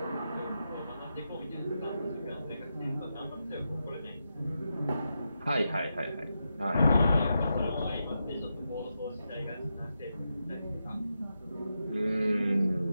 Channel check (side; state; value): both; inverted; correlation -0.87